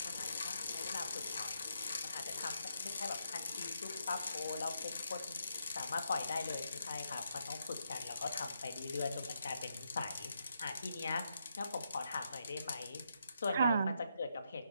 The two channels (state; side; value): inverted; both; correlation -0.80